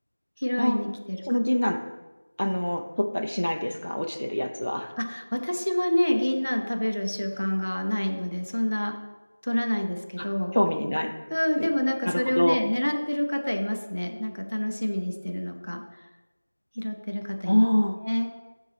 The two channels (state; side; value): inverted; both; correlation -1.00